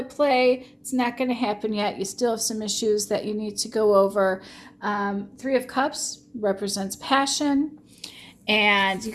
play. It's not going to happen yet. You still have some issues that you need to go over. 3 of Cups represents passion. And you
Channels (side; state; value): both; identical; correlation 1.00